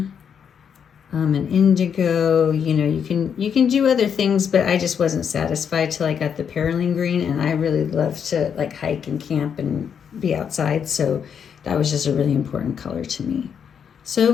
an indigo. You know, you can do other things, but I just wasn't satisfied till I got the Perylene Green, and I really love to like hike and camp and be outside, so that was just a really important color to me. So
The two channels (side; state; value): right; quieter; 7.5 dB